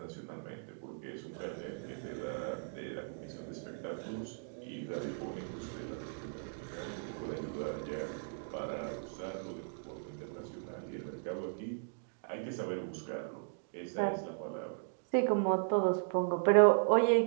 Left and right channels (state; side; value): silent; left; digital silence